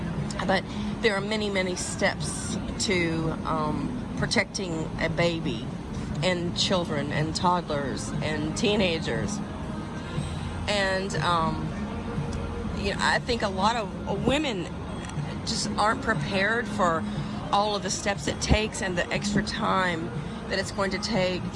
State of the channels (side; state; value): both; identical; correlation 1.00